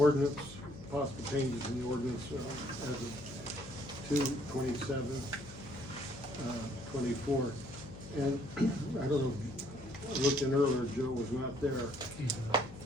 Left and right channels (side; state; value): left; noise; hum, 15 dB below the sound